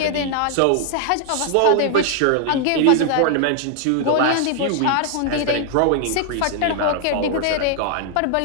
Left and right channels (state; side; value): different; both; correlation 0.00